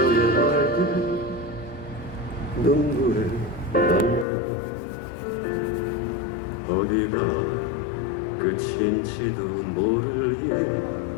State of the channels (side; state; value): right; drops out; at 4.2 s